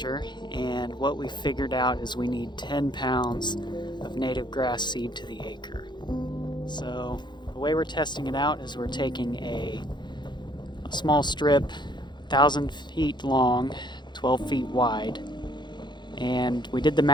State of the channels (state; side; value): late; right; 0.21 ms